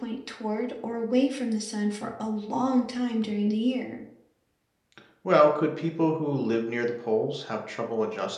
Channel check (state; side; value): identical; both; correlation 1.00